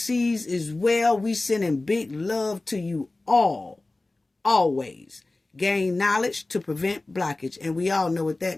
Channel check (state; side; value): quieter; right; 3.0 dB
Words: as well. We sending big love to you all. Always. Gain knowledge to prevent blockage. And we all know what